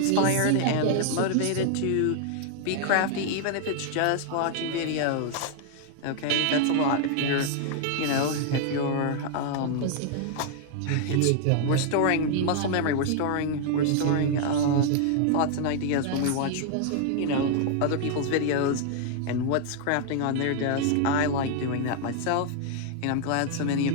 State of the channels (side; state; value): both; different; correlation 0.00